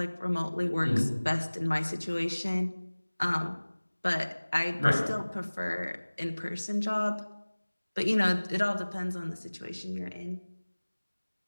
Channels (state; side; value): inverted; both; correlation -1.00